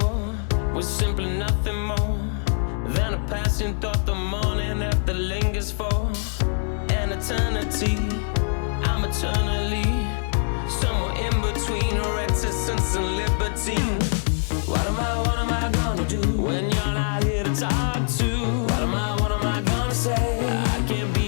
was simply nothing more than a passing thought. The morning after lingers for an eternity. I'm eternally somewhere in between reticence and libertine. What am I gonna do when you're not here to talk to? What am I gonna say? I can't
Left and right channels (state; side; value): silent; right; 63 dB below the other